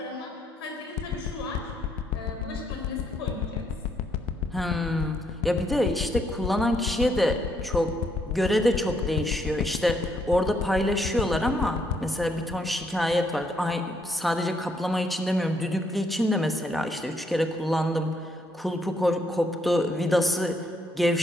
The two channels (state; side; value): normal; both; correlation 0.73